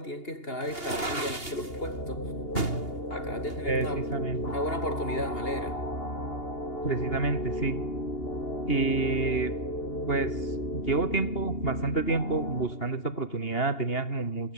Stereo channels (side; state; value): right; late; 2.8 ms